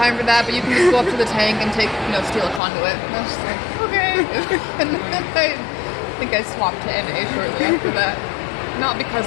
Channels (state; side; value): drops out; right; at 2.6 s